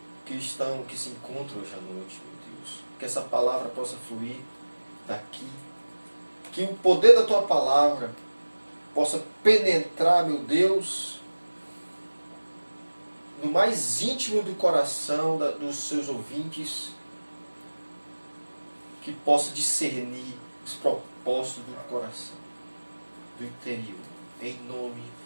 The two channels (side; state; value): both; inverted; correlation -1.00